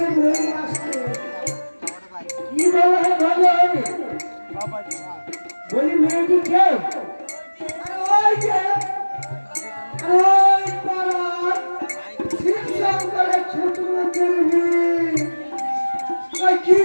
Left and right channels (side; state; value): both; inverted; correlation -1.00